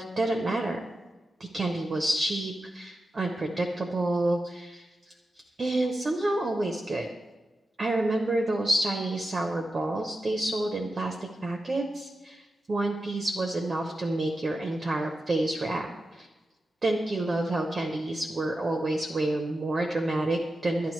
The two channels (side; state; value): both; normal; correlation 0.90